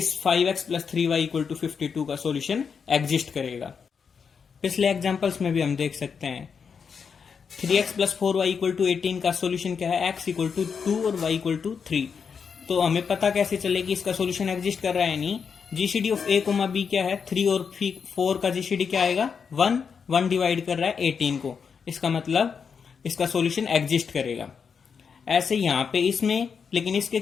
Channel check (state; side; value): quieter; right; 6.2 dB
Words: 5x plus 3y equal to 52 का सॉल्यूशन एग्जिस्ट करेगा। पिछले एग्जांपल्स में भी हम देख सकते हैं 3x plus 4y equal to 18 का सॉल्यूशन क्या है, x इक्वल टू 2 और y इक्वल टू 3। तो हमें पता कैसे चले कि इसका सॉल्यूशन एग्जिस्ट कर रहा है नहीं, GCD of a comma b क्या है, 3 और 4 का जीसीडी क्या आएगा, 1 डिवाइड कर रहा है 18 को, इसका मतलब इसका सॉल्यूशन एग्जिस्ट करेगा। ऐसे यहाँ पे इसमें, लेकिन इसके